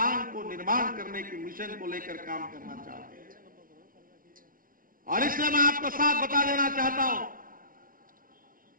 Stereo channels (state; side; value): late; left; 0.41 ms